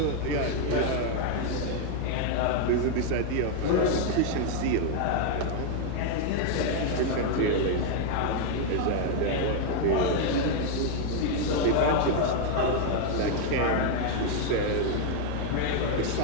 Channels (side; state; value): both; different; correlation 0.00